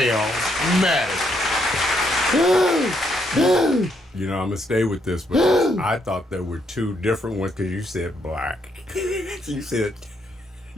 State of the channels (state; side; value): normal; both; correlation 0.75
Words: mannequin. You know, I'm gonna stay with this, but I thought there were two different ones because you said black. you said